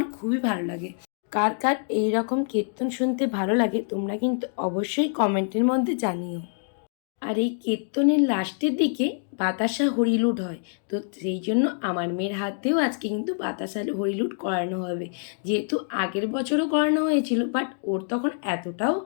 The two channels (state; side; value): silent; right; digital silence